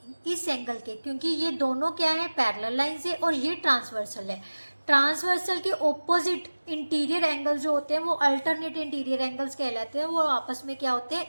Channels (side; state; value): both; inverted; correlation -1.00